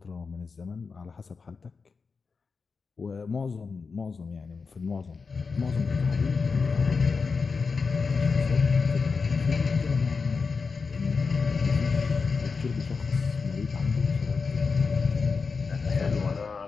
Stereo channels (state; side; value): quieter; right; 4.9 dB